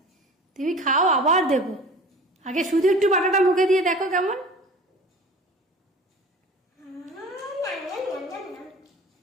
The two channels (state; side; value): normal; both; correlation 0.42